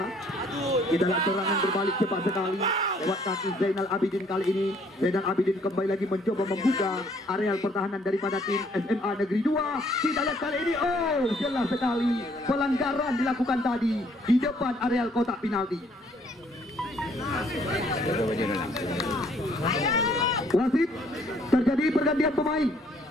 Kita lihat serangan berbalik cepat sekali lewat kaki Zainal Abidin kali ini. Zainal Abidin kembali lagi mencoba membuka areal pertahanan daripada tim SMA Negeri 2. Kita lihat kali ini, oh jelas sekali pelanggaran dilakukan tadi di depan areal kotak penalti. Wasit, terjadi pergantian pemain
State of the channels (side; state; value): both; normal; correlation 0.64